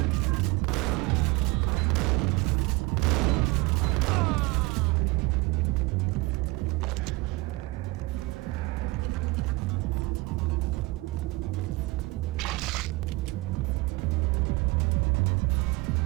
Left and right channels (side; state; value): left; quieter; 23.4 dB